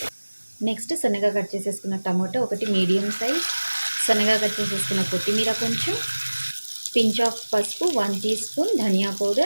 నెక్స్ట్ సన్నగా కట్ చేసేసుకున్న టమాటో ఒకటి మీడియం సైజ్, సన్నగా కట్ చేసేసుకున్న కొత్తిమీర కొంచెం, పించ్ ఆఫ్ పసుపు, 1 టీ స్పూన్ ధనియా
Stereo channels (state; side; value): inverted; both; correlation -1.00